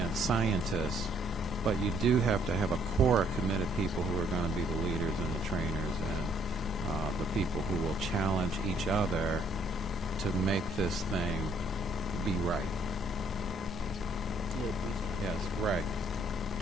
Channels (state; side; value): normal; both; correlation 0.66